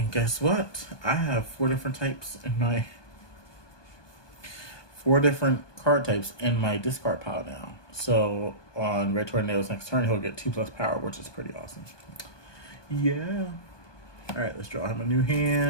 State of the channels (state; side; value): late; right; 1.2 ms